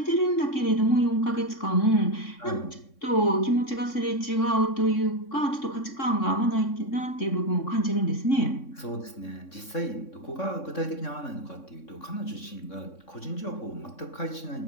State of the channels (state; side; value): late; right; 3.6 ms